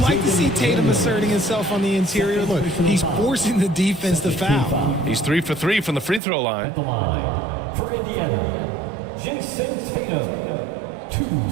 to see Tatum asserting himself on the interior. Look, he's forcing the defense to foul. He's 3 for 3 from the free throw line. At the line for Indiana, Jason Tatum. 2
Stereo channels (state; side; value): drops out; left; at 6.2 s